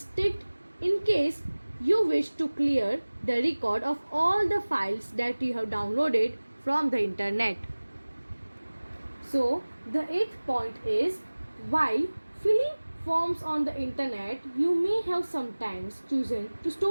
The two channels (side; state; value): both; inverted; correlation -1.00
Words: ticked in case you wish to clear the record of all the files that you have downloaded from the internet. So the eighth point is, while filling forms on the internet, you may have sometimes chosen to